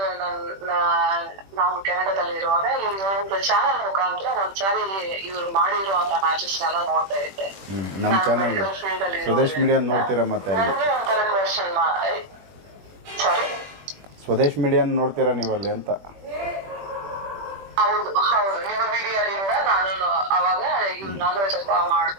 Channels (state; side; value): late; left; 21 ms